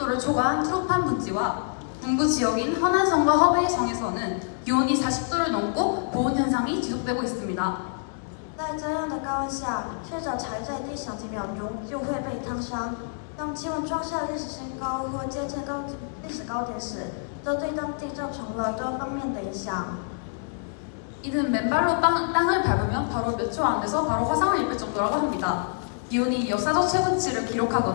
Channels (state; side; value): silent; right; 60 dB below the other